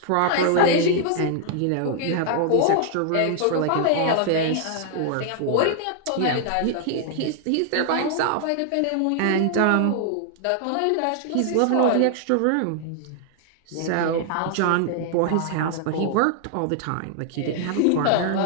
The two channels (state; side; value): different; both; correlation 0.00